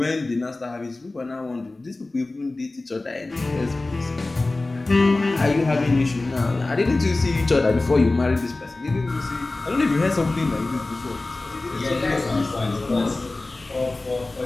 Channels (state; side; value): quieter; right; 3.1 dB